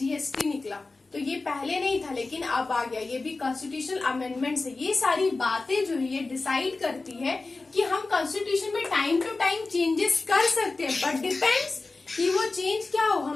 निकला। तो ये पहले नहीं था लेकिन अब आ गया। ये भी कॉन्स्टिट्यूशनल अमेंडमेंट है। ये सारी बातें जो है ये डिसाइड करती है कि हम कॉन्स्टिट्यूशन में टाइम टू टाइम चेंजेस कर सकते हैं, बट डिपेंड्स कि वो चेंज क्या हो,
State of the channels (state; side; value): quieter; right; 3.6 dB